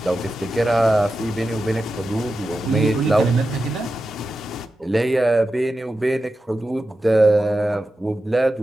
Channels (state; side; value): normal; both; correlation 0.91